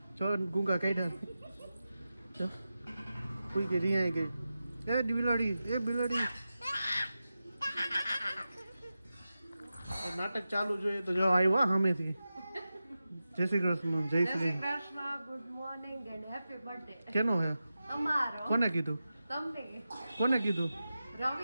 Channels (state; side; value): inverted; both; correlation -0.93